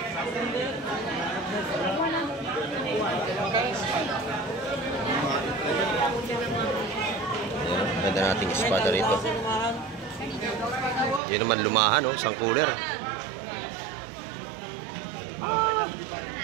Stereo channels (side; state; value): left; drops out; at 11.2 s